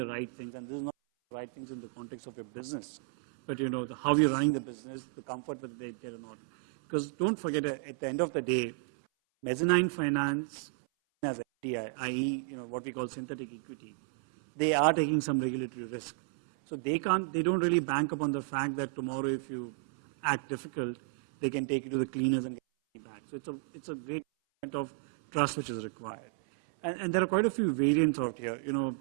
right things, and this is not the right things in the context of your business, but how you're running the business, the comfort whether they get or not. Because don't forget, at the end of the day, mezzanine finance as FDI, i.e., what we call synthetic equity, they are taking some regulatory risk. So they don't really bank upon the fact that tomorrow if you act difficult, they can take you to the cleaners and get you back. So it's a great element of trust which is required. And there are quite a few variants out here.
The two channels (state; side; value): silent; left; 56 dB below the other